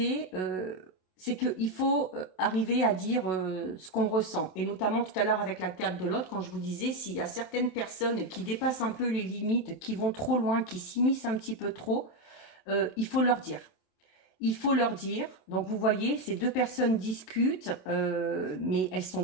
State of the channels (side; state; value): right; late; 27 ms